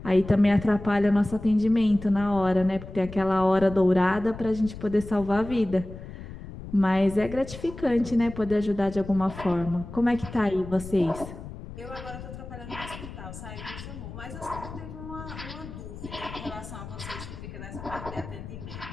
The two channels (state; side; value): noise; left; rumble, 12 dB below the sound